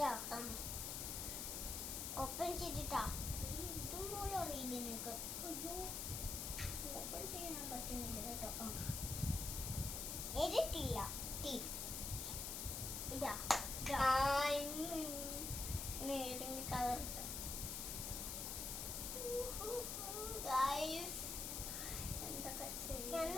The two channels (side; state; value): left; noise; hiss, 3 dB below the sound